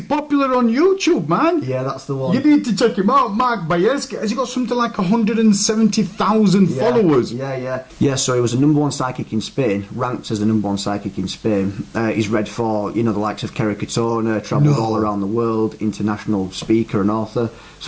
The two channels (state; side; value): identical; both; correlation 1.00